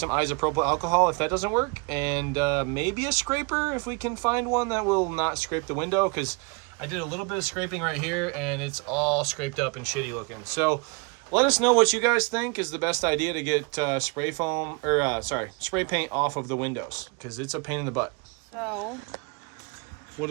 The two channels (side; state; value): left; quieter; 30.9 dB